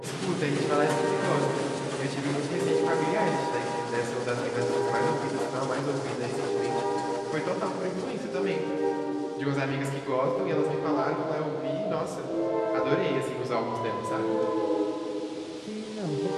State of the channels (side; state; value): both; identical; correlation 1.00